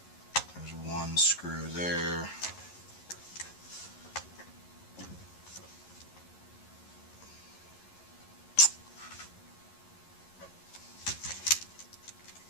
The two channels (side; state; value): right; late; 11 ms